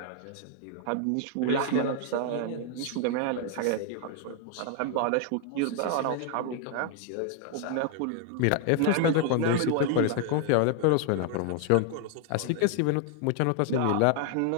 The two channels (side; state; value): both; different; correlation 0.00